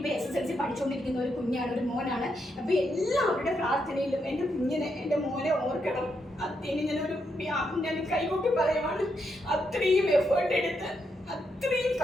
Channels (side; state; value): both; normal; correlation 0.80